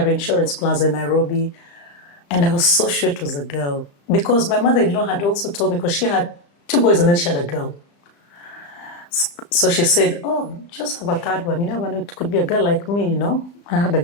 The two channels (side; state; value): right; late; 35 ms